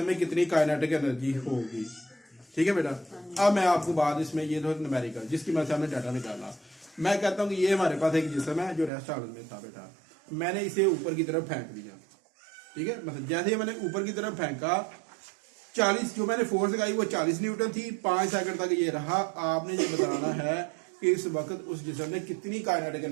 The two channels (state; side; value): drops out; left; at 8.9 s